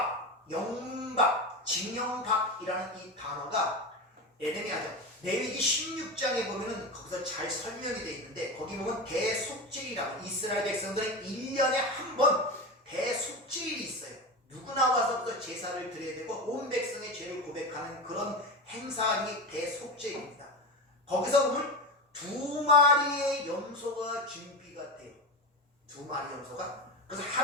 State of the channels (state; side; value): normal; both; correlation 0.22